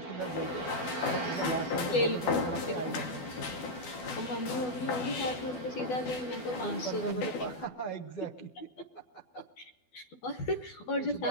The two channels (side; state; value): right; late; 12 ms